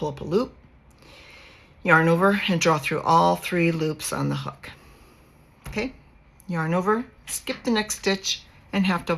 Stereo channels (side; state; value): both; identical; correlation 1.00